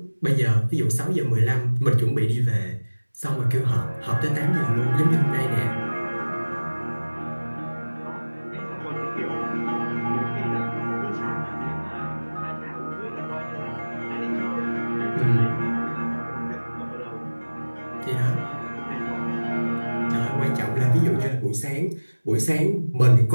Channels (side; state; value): both; inverted; correlation -1.00